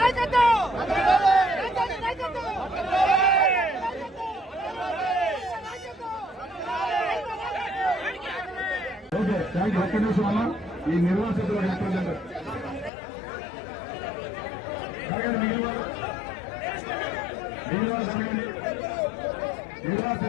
ఓకే, థ్యాంక్ యూ. ఒక్క నిమిషం అన్న, ఈ నిర్వాసితుల రిప్రజెంటేటివ్ జరగండి, మిగిలిన వాళ్ళు జరగండి.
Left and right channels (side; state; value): right; drops out; at 12.9 s